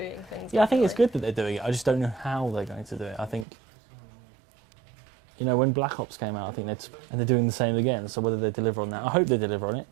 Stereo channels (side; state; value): left; drops out; at 3.5 s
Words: things. Yeah, I think it's differently. good that they're doing it. I just don't know how they're going to do it. I think, you know, when Black Ops came out, I think and they're doing the same again. So whether they deliver on that, I hope they deliver on it.